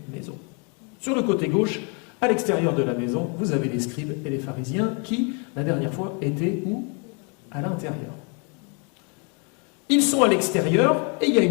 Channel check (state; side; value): quieter; right; 35.9 dB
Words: maison. Sur le côté gauche, à l'extérieur de la maison, vous avez les scribes et les pharisiens qui, la dernière fois, étaient où? À l'intérieur. Ils sont à l'extérieur et il y a